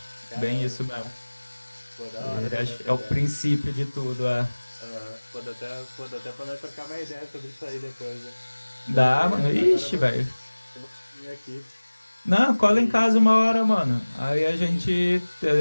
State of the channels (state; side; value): inverted; both; correlation -1.00